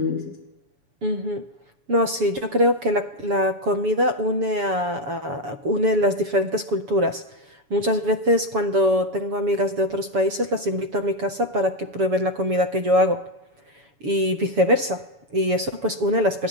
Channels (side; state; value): left; late; 7.1 ms